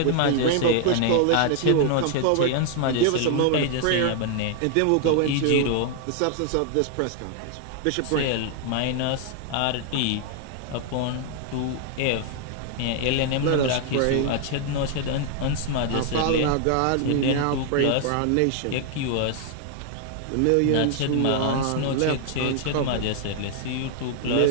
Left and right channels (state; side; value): different; both; correlation 0.00